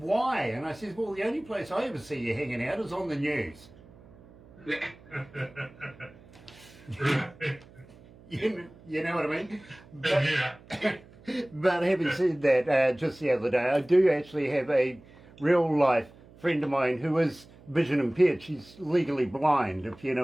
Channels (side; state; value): right; noise; hum, 23 dB below the sound